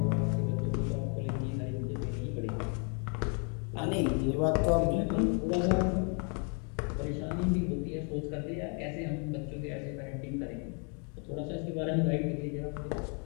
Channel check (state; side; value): quieter; right; 38.9 dB